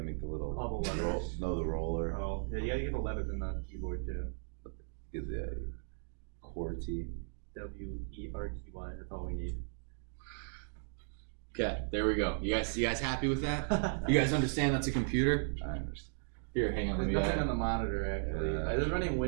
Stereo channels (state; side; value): silent; left; 54 dB below the other